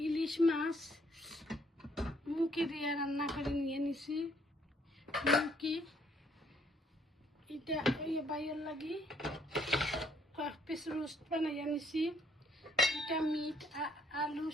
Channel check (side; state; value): both; normal; correlation 0.66